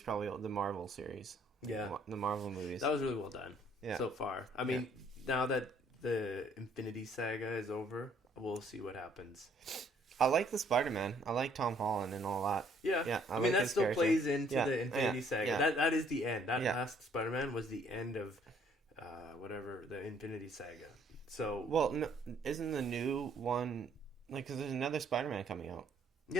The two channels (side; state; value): both; normal; correlation 0.63